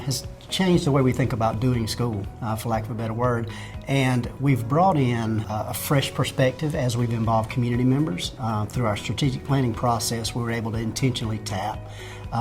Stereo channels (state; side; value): identical; both; correlation 1.00